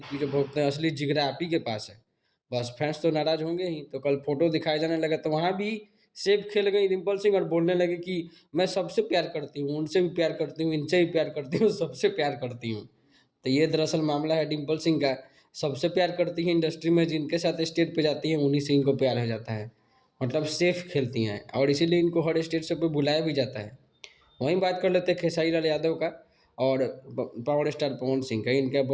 पीछे भोंकते हैं, असली जिगरा आप ही के पास है। बस फैंस तो नाराज होंगे ही। तो कल फोटो दिखाए जाने लगा तो वहाँ भी सेब खेल गई डिम्पल सिंह और बोलने लगे कि मैं सबसे प्यार करती हूँ, उनसे भी प्यार करती हूँ, इनसे भी प्यार करती हूँ, सबसे प्यार करती हूँ। तो ये दरअसल मामला है डिम्पल सिंह का। सबसे प्यार करती हैं इंडस्ट्री में, जिनके साथ स्टेज पे जाती हैं उन्हीं से इनको प्यार हो जाता है। मतलब सेफ खेलती हैं और इसीलिए इनको हर स्टेज से पे बुलाया भी जाता है। वहीं बात कर लेते हैं खेसारी लाल यादव का और पावर स्टार पवन सिंह का। इनका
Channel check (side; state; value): both; identical; correlation 1.00